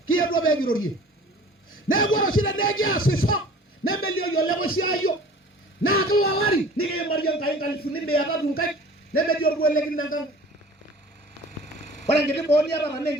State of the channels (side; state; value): both; normal; correlation 0.46